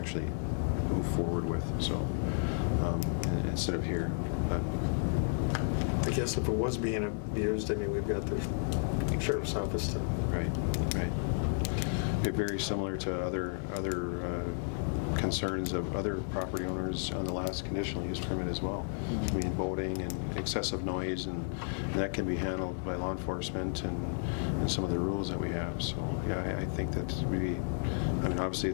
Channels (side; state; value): right; silent; 56 dB below the other